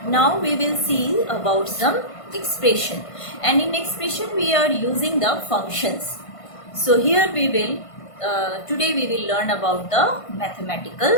Now we will see about some expression, and in expression we are using the functions. So here we will today we will learn about the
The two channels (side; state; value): right; late; 1.5 ms